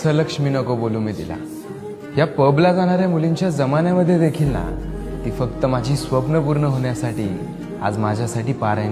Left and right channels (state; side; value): identical; both; correlation 1.00